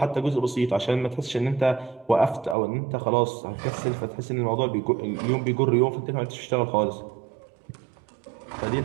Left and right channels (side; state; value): left; drops out; at 2.6 s